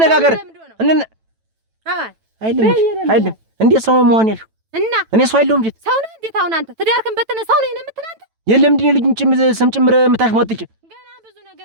አይደለም እንዴት ሰው መሆን ያልሽው? እና እኔ ሰው አይደለሁም እንዴት? ሰው ነህ እንዴት? አሁን አንተ ትዳርክን በተነ ሰው ነህ የምትል አንተ? የለም እንዴ ልጅን ስም ጭምር የምታሽሟጥጭ ገና ብዙ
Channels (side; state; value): left; late; 9.1 ms